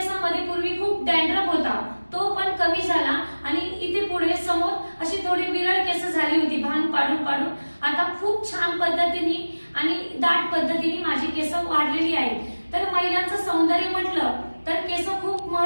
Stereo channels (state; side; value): inverted; both; correlation -1.00